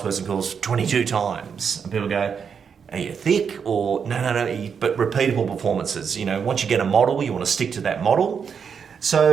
course 22 times. And people go, are you thick? Or no, but repeatable performances. You know, once you get a model, you want to stick to that model.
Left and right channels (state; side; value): quieter; left; 6.7 dB